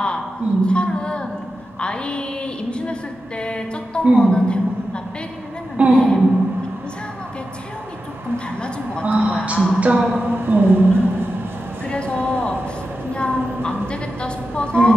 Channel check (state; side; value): normal; both; correlation 0.91